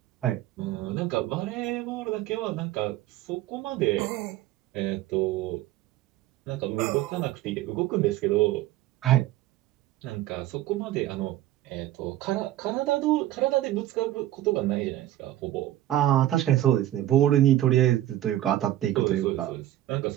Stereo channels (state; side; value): quieter; left; 14.0 dB